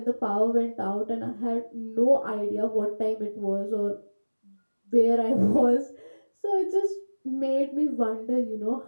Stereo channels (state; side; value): inverted; both; correlation -1.00